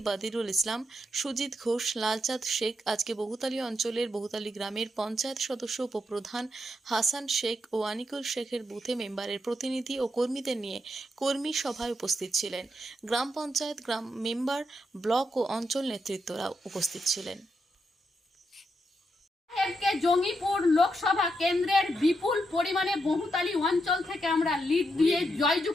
বাদিরুল ইসলাম, সুজিত ঘোষ, লালচাঁদ শেখ আজকে বহুতালী অঞ্চলের বহুতালী গ্রামের পঞ্চায়েত সদস্য উপপ্রধান হাসান শেখ ও আনিকুল শেখের বুথে মেম্বারের প্রতিনিধি ও কর্মীদের নিয়ে কর্মী সভায় উপস্থিত ছিলেন। গ্রাম পঞ্চায়েত, গ্রাম মেম্বার, ব্লক ও অঞ্চল নেতৃত্বরা উপস্থিত ছিলেন। জঙ্গিপুর লোকসভা কেন্দ্রের বিপুল পরিমাণে বহুতালী অঞ্চল থেকে আমরা লিড দিয়ে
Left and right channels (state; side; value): normal; both; correlation 0.82